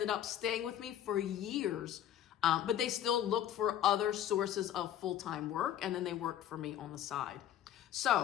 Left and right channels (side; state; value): right; quieter; 10.8 dB